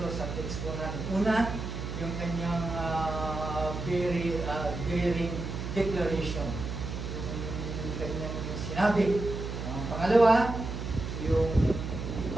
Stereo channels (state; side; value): noise; right; hum, 6 dB below the sound